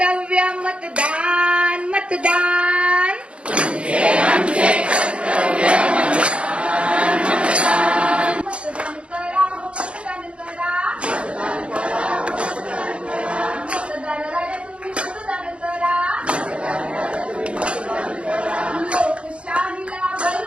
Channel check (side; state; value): left; late; 0.059 ms